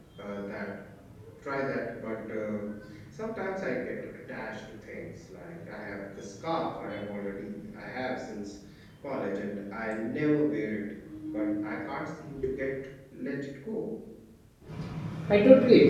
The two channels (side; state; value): both; identical; correlation 1.00